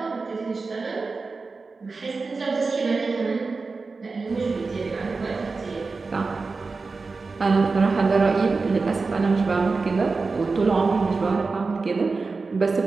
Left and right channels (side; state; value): left; quieter; 4.1 dB